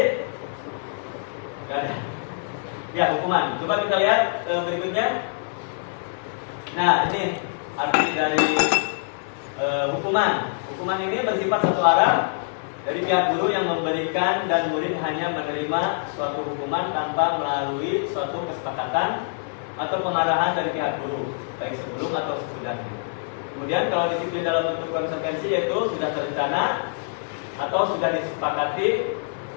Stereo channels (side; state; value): right; silent; digital silence